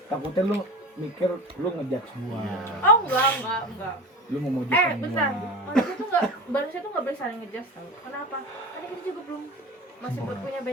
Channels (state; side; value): normal; both; correlation 0.31